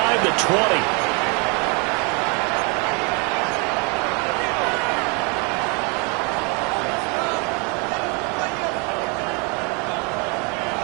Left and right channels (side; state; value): left; quieter; 32.8 dB